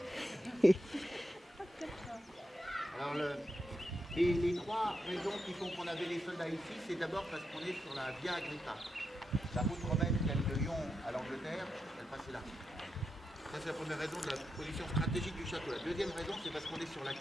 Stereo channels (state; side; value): normal; both; correlation 0.86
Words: Alors les trois raisons qui font qu'on avait les soldats ici, c'est d'abord parce qu'on est sur la Via Agrippa. La route romaine qui allait de Lyon à l'Angleterre, elle passait là. Ça, c'est la première raison de la position stratégique du château. La deuxième raison, c'est parce qu'on est sur la